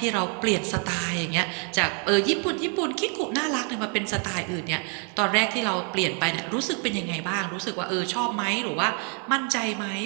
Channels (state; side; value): quieter; left; 39.7 dB